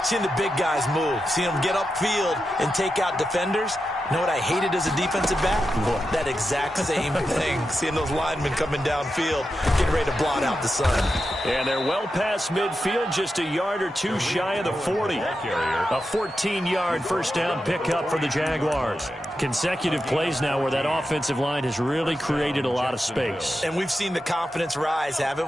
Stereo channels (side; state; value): both; normal; correlation 0.89